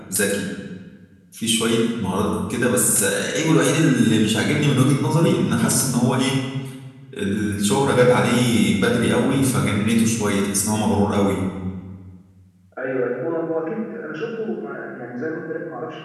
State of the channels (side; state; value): both; identical; correlation 1.00